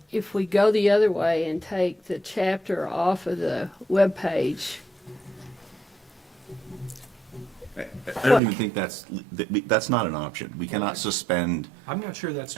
go the other way and take the chapter off of the webpage, I don't even think that's not an option. We cannot suspend I'm not sure that's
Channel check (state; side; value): drops out; left; at 8.4 s